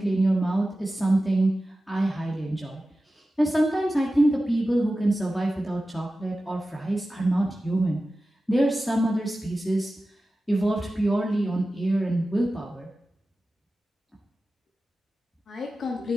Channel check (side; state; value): both; normal; correlation 0.94